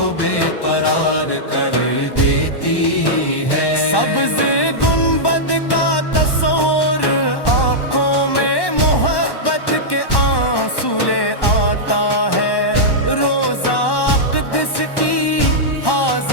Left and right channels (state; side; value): late; right; 1.1 ms